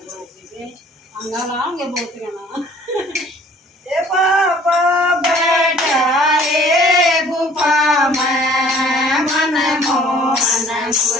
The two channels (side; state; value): both; normal; correlation 0.54